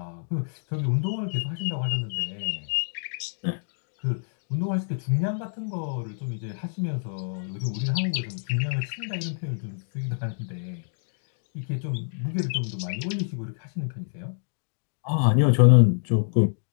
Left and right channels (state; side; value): silent; right; digital silence